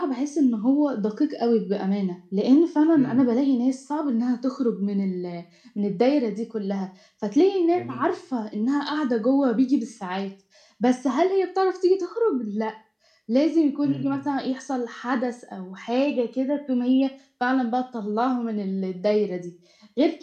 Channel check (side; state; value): both; identical; correlation 1.00